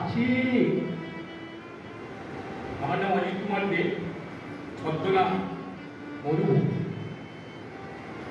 আমার নাম অজিত কুমার দে, ছদ্মনাম মরুভূমি।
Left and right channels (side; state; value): both; identical; correlation 1.00